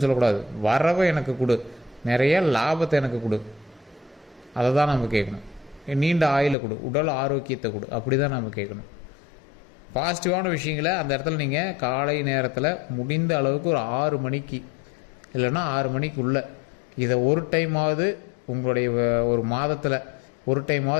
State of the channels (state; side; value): drops out; right; at 6.6 s